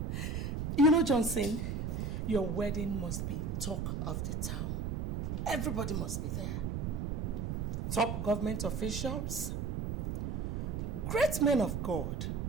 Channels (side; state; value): right; noise; rumble, 2 dB below the sound